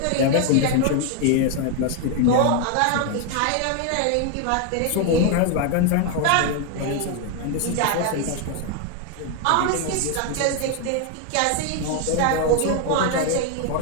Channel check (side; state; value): both; different; correlation 0.01